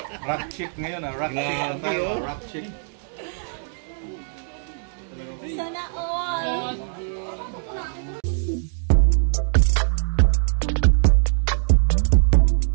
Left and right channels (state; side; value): silent; left; digital silence